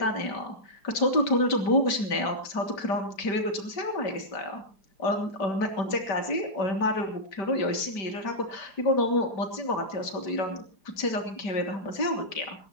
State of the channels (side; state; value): right; late; 4.9 ms